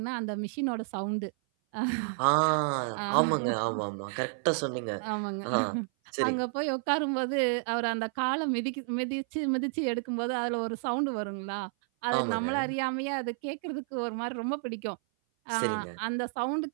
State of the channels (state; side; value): silent; left; 56 dB below the other